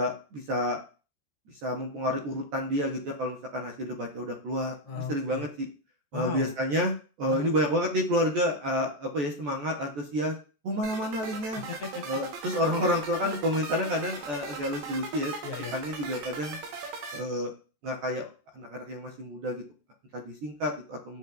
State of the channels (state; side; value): late; left; 14 ms